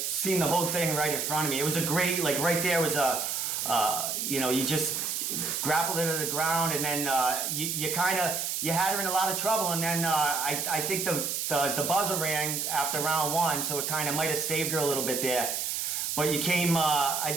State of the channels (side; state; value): right; noise; hiss, 1 dB below the sound